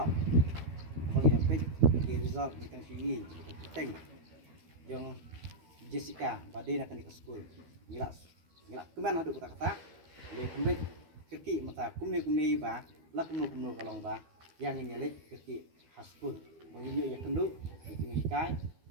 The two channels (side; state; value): left; late; 12 ms